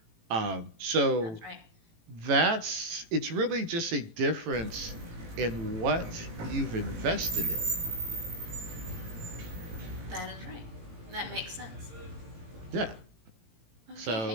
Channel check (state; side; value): late; left; 18 ms